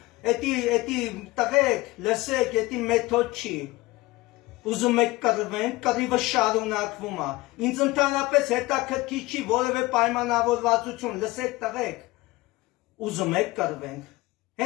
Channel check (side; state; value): right; quieter; 20.4 dB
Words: էդի տղեկ, լսեք, էդի մեթոդ չի։ Ուզում եք կռվենք, կռիվը շարունակվում է։ Ինձ ընդհանրապես հետաքրքիր չի որևէ պայմանավորվածություն, լսեք տղեկ։ Ուզում եք կռվենք։